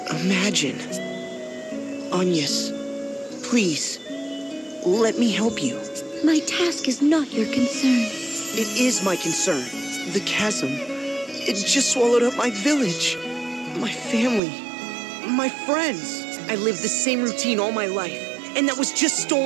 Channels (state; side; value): drops out; left; at 14.4 s